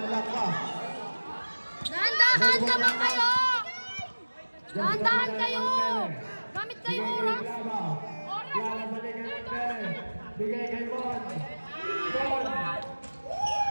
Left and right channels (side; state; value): both; inverted; correlation -1.00